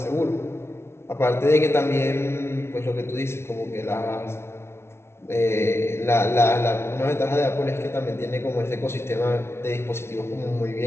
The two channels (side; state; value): right; late; 0.12 ms